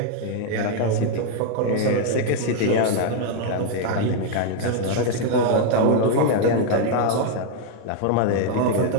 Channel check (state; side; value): different; both; correlation 0.00